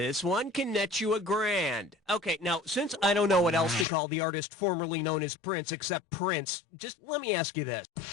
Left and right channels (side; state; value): right; drops out; at 3.9 s